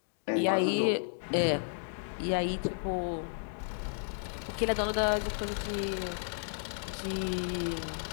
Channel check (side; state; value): right; silent; digital silence